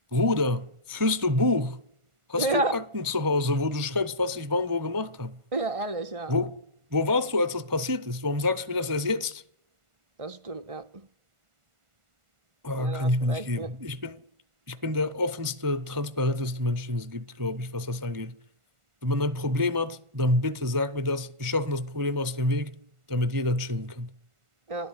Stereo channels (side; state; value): left; late; 1.5 ms